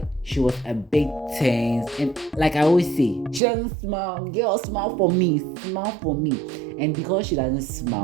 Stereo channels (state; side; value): drops out; left; at 3.4 s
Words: she was a bit tense. And like I always say, she doesn't smile. Girl, smile for me, smile for me. And because she doesn't